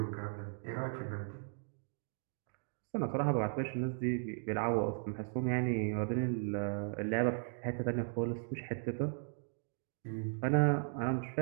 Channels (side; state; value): left; silent; 53 dB below the other